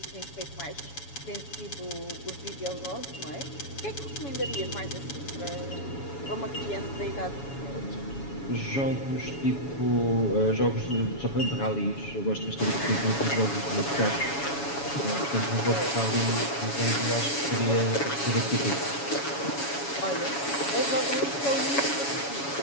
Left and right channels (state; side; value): late; right; 7.1 ms